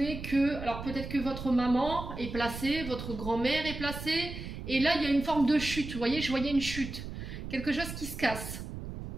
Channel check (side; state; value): right; noise; rumble, 8 dB below the sound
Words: que, alors peut-être que votre maman est placée, votre grand-mère est placée, et là il y a une forme de chute, vous voyez, je voyais une chute, quelque chose qui se casse.